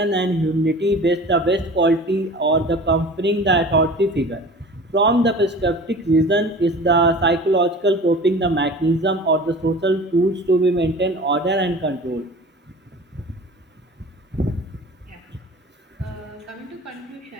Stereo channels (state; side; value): normal; both; correlation 0.40